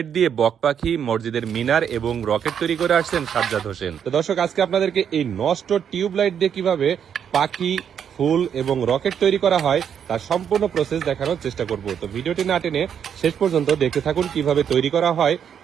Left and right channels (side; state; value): left; quieter; 8.2 dB